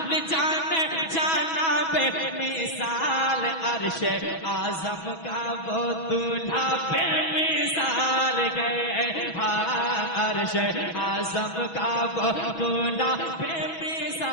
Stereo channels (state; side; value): late; right; 6.1 ms